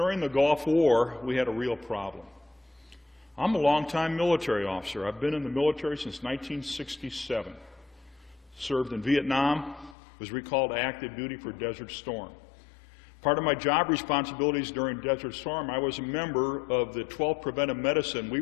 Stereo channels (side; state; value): right; drops out; at 10.0 s